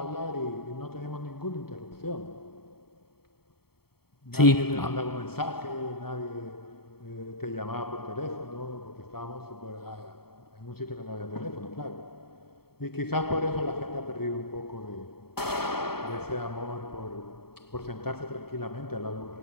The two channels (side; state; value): right; late; 0.95 ms